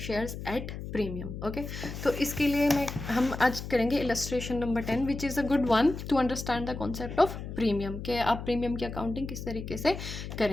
at premium. Okay, तो इसके लिए हम आज करेंगे illustration number 10 which is a good one two understand the concept of premium, कि आप प्रीमियम की अकाउंटिंग किस तरीके से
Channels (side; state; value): left; noise; hum, 8 dB below the sound